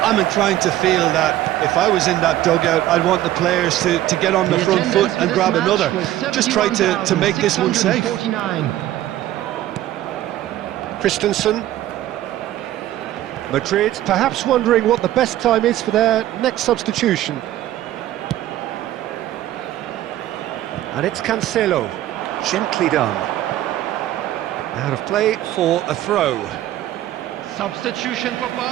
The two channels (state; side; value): quieter; left; 13.9 dB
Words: I'm inclined to feel that if I was in that dugout, I'd want the players to get on the front foot and grab another. Just try to make this one safe. Christensen. Madrid perhaps wondering what the best time is for their next substitution. And it's Cancelo, gently done. Out of play for a throw. Substitution for